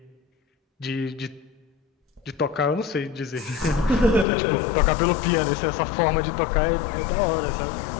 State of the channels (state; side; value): drops out; right; at 4.2 s